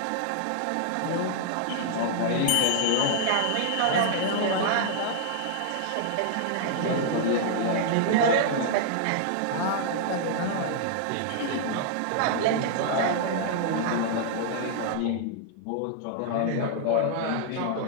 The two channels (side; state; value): both; different; correlation -0.01